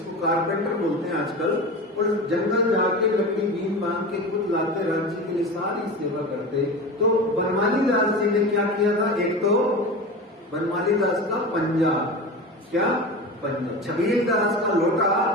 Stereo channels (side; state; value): both; normal; correlation 0.28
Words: कारपेंटर बोलते हैं आजकल। और जंगल जाके लकड़ी बीम बांध के खुद लाते, राज्य के लिए सारी सेवा करते। तो बनमाली दास जी ने क्या किया था? एक तो बनमाली दास का पंजा, क्या पंजा, छबील दास का लोटा